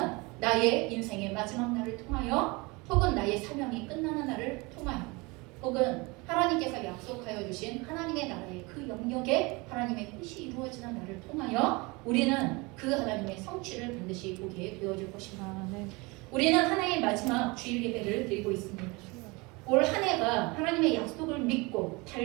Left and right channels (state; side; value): quieter; left; 25.9 dB